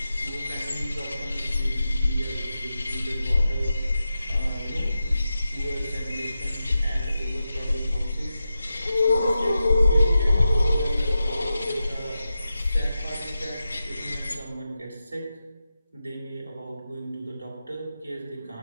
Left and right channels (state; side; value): inverted; both; correlation -0.91